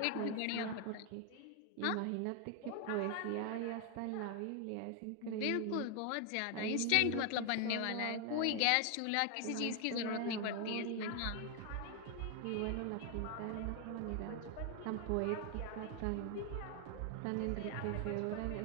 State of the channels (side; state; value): both; different; correlation 0.00